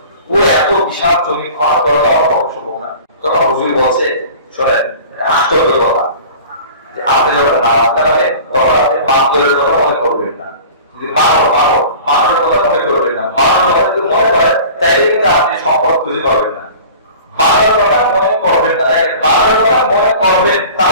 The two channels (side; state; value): both; inverted; correlation -0.41